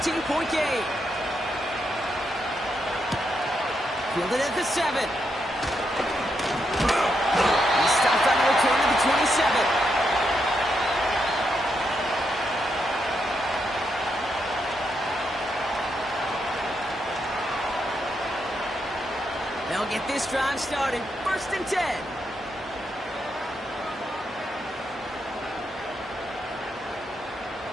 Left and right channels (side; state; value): both; normal; correlation 0.81